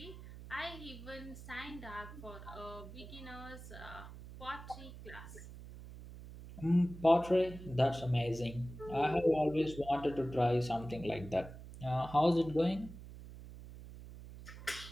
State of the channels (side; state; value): right; noise; hum, 14 dB below the sound